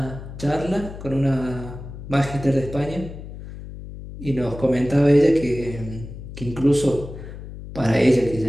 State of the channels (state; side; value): noise; left; hum, 12 dB below the sound